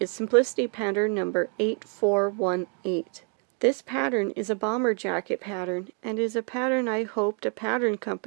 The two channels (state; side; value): quieter; left; 39.9 dB